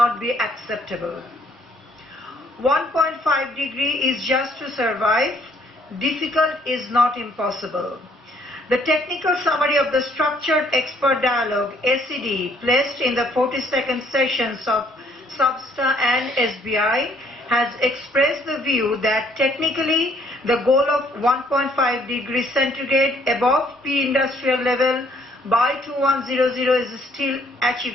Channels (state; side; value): normal; both; correlation 0.65